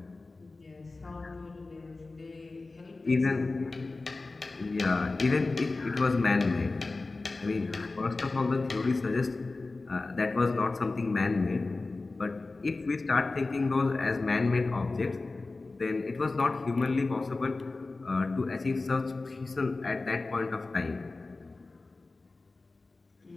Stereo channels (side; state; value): right; quieter; 3.5 dB